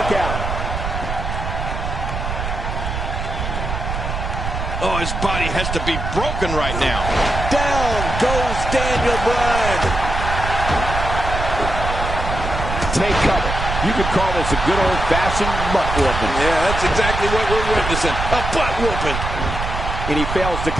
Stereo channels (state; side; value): noise; right; rumble, 4 dB below the sound